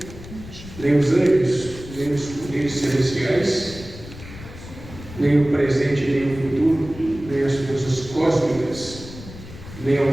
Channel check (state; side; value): noise; left; rumble, 15 dB below the sound